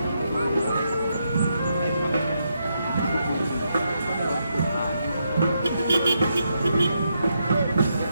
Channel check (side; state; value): both; inverted; correlation -0.81